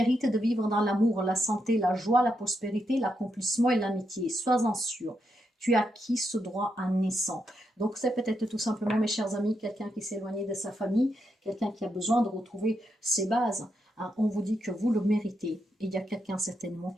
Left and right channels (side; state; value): both; normal; correlation 0.82